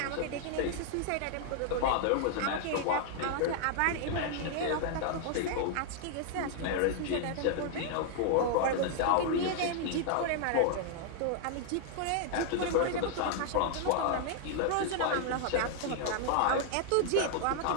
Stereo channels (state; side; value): different; both; correlation 0.00